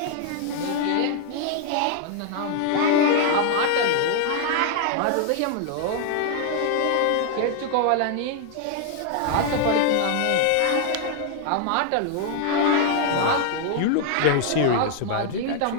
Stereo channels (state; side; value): different; both; correlation 0.00